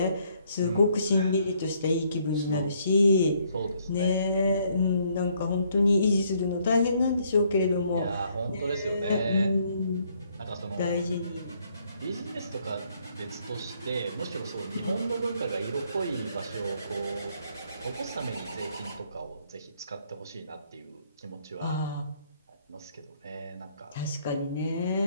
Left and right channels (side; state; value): both; inverted; correlation -0.69